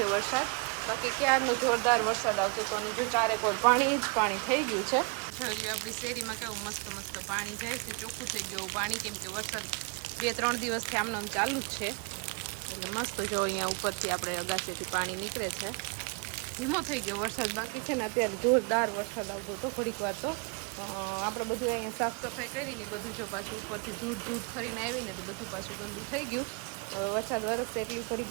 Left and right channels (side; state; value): left; quieter; 33.1 dB